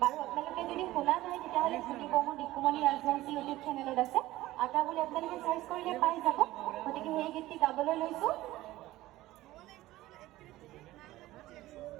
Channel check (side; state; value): left; quieter; 16.7 dB